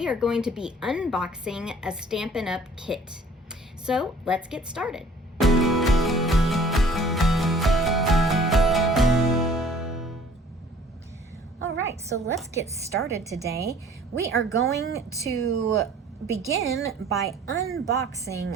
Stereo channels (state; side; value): normal; both; correlation 0.53